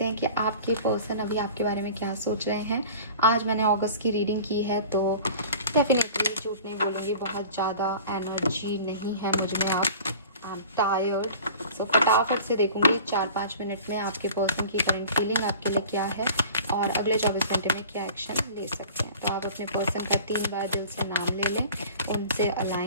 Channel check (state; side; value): inverted; both; correlation -0.43